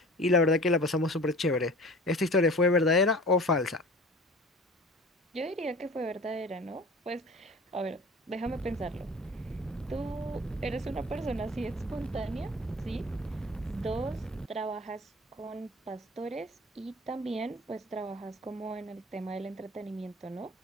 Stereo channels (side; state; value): both; normal; correlation 0.42